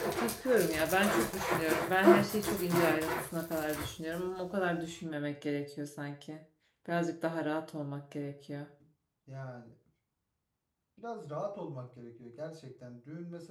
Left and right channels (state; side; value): identical; both; correlation 1.00